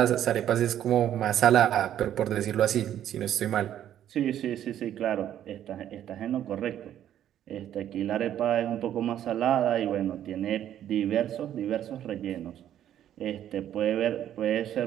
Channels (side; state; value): left; quieter; 11.0 dB